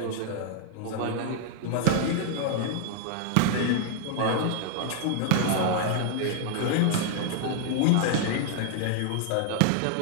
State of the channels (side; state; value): both; different; correlation -0.01